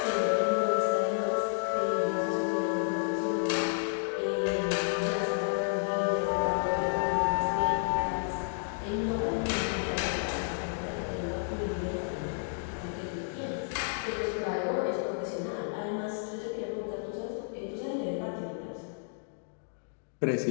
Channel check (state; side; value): silent; right; digital silence